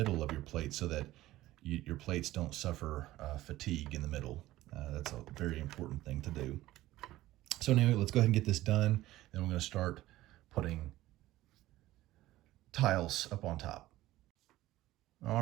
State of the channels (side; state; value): left; quieter; 16.1 dB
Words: of your plate so that your plates don't suffer fatigue in the middle. That's a very important thing to do. So anyway, let's go ahead and get this done. Then we're going to start putting tiles up on top.